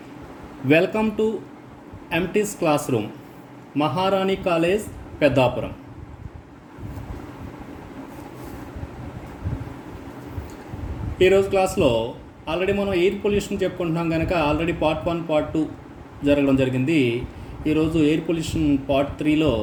Welcome to MT's classroom, Maharani College, Peddapuram. ఈరోజు క్లాస్లో already మనం air pollution చెప్పుకుంటున్నాం కనుక ఆల్రెడీ పార్ట్ 1 పార్ట్ 2 జరగడం జరిగింది. ఈరోజు ఎయిర్ పొల్యూషన్ పార్ట్ 3లో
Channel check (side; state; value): both; identical; correlation 1.00